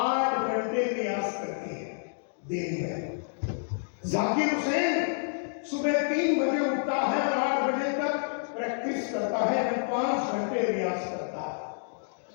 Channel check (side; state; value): right; silent; digital silence